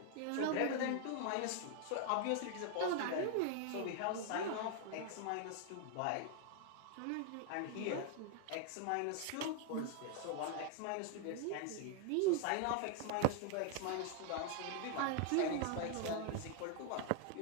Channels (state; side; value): different; both; correlation 0.00